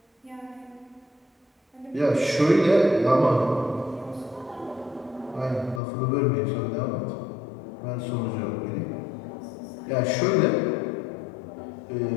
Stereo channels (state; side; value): drops out; right; at 5.8 s